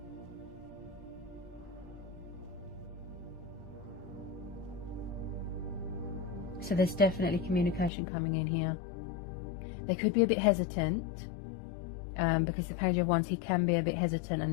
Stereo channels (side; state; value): right; drops out; at 7.9 s